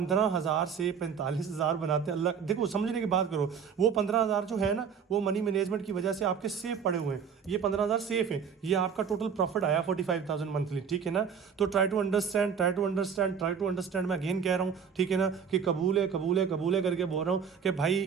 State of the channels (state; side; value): quieter; left; 6.9 dB